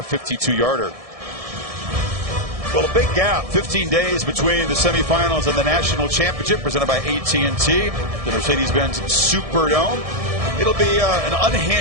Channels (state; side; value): late; left; 1.7 ms